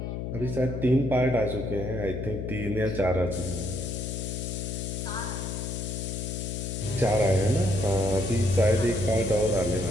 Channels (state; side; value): noise; left; hum, 4 dB below the sound